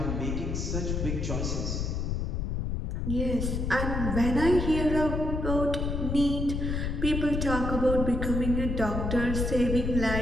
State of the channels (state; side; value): noise; left; rumble, 1 dB below the sound